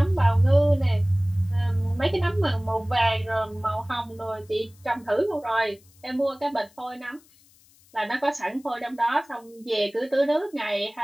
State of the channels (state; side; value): noise; left; hiss, 29 dB below the sound